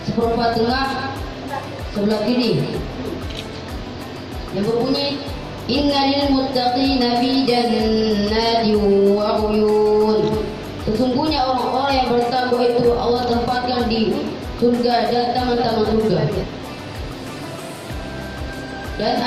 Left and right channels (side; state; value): both; identical; correlation 1.00